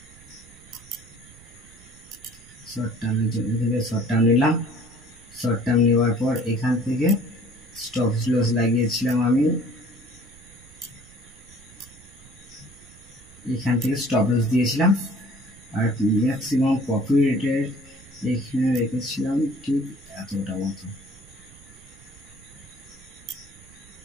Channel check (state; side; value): noise; right; rumble, 23 dB below the sound